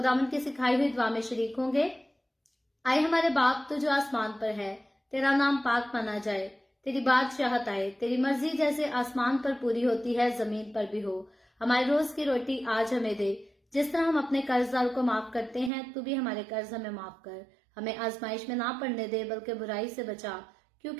की सिखाई हुई दुआ में शरीक होंगे। आए हमारे बाप, तू जो आसमान पर है, तेरा नाम पाक माना जाए, तेरी बादशाहत आए, तेरी मर्जी जैसे आसमान पर पूरी होती है जमीन पर भी हो। हमारे रोज की रोटी आज हमें दे। जिस तरह हम अपने कर्जदार को माफ करते हैं, तू भी हमारे कर्ज हमें माफ कर। हमें आजमाइश में ना पड़ने दे, बल्कि बुराई से बचा,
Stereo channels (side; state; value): left; drops out; at 15.7 s